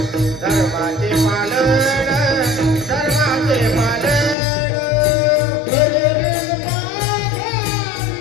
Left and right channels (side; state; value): right; drops out; at 4.4 s